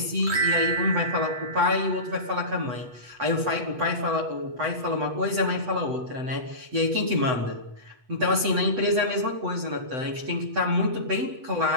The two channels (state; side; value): late; left; 7.9 ms